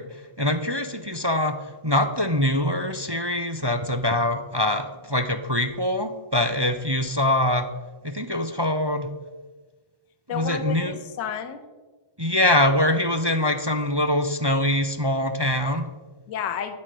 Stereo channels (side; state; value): left; late; 1.1 ms